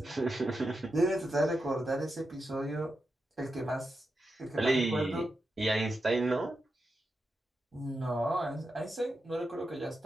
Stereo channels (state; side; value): normal; both; correlation 0.88